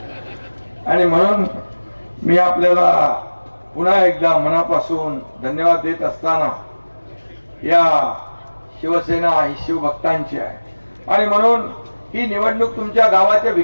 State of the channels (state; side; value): inverted; both; correlation -1.00